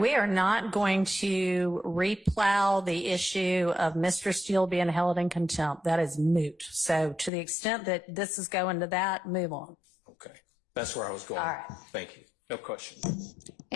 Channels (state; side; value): drops out; right; at 7.3 s